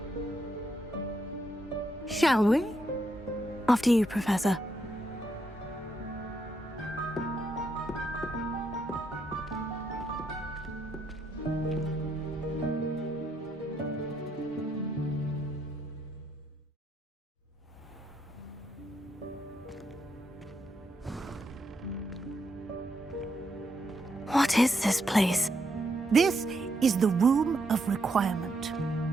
Shall we? After you, Professor. What is this place? This is the Room of Requirement.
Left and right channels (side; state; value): both; normal; correlation 0.79